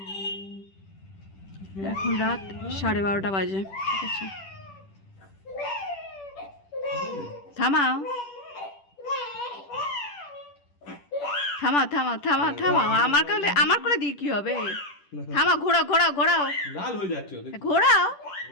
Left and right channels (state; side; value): late; right; 10 ms